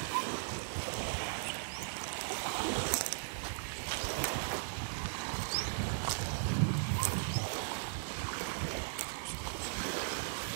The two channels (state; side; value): silent; left; digital silence